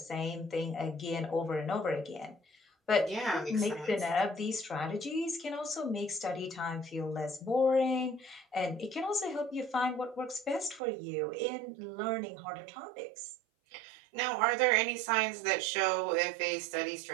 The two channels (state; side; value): drops out; left; at 10.8 s